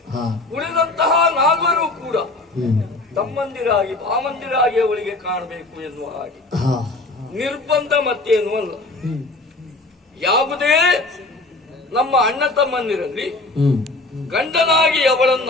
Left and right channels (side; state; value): right; quieter; 3.1 dB